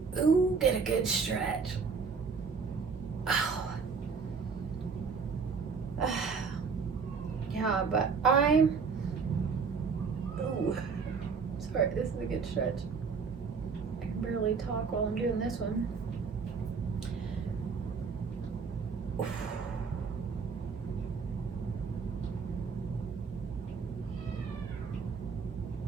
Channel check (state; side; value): quieter; left; 5.3 dB